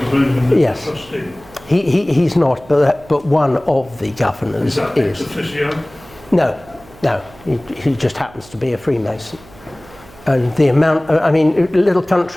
of England is yes. a trustee? He's not, but one of the governors is. That ex officio? No, he just happens to be a Freemason. And the amount, I mean, little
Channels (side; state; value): right; noise; hum, 23 dB below the sound